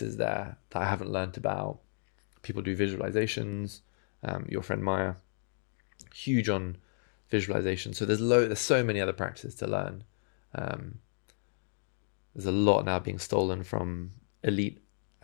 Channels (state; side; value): silent; right; digital silence